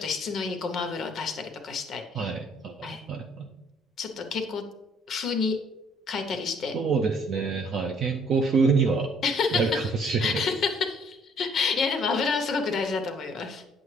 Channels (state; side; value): normal; both; correlation 0.62